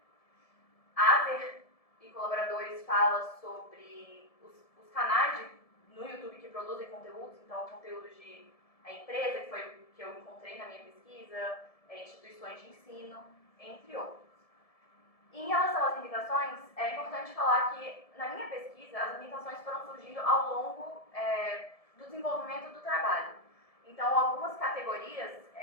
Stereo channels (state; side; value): late; right; 1.7 ms